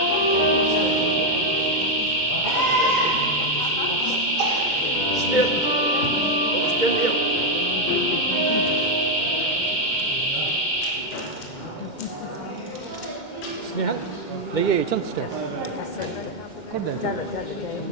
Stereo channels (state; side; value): late; right; 2.1 ms